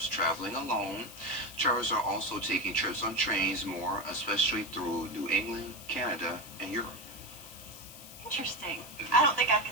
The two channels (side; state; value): left; noise; hiss, 15 dB below the sound